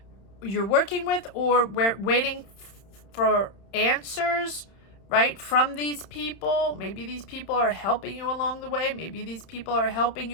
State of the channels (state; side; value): late; right; 30 ms